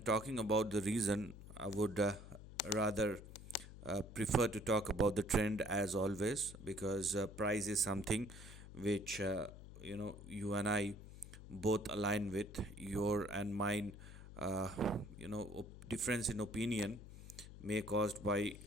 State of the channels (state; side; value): noise; left; hum, 14 dB below the sound